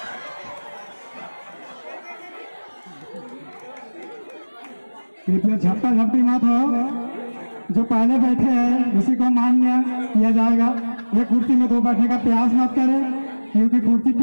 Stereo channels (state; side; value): inverted; both; correlation -1.00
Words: कृपया झपटा झपटी मत हो। जो पहले बैठे हैं उसी को मान्य किया जाएगा। ये कुर्सी में 2 बैठने का प्रयास मत करें क्योंकि कुर्सी